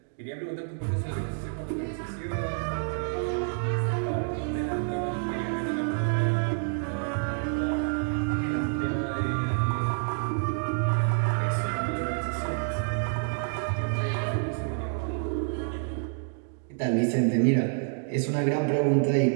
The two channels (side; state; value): left; silent; digital silence